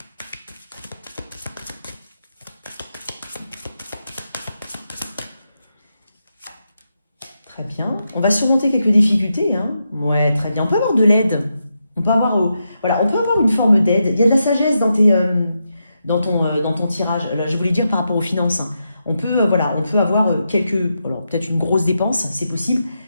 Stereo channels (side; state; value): both; inverted; correlation -0.85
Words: Très bien. On va surmonter quelques difficultés. Hein. Ouais, très bien. On peut avoir de l'aide. On peut avoir, voilà, on peut avoir une forme d'aide. Il y a de la sagesse dans ton tirage. Là, je voulais dire par rapport aux finances. Hein. On peut avoir peut-être une grosse dépense, c'est possible.